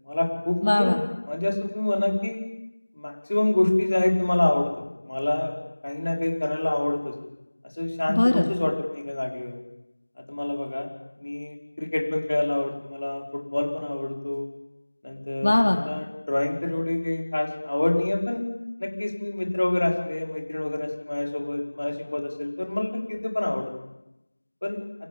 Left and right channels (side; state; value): both; inverted; correlation -1.00